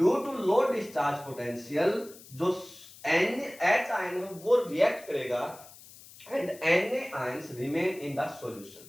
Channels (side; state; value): left; noise; hiss, 20 dB below the sound